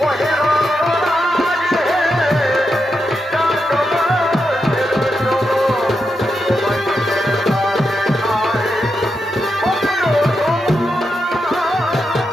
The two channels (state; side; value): normal; both; correlation 0.85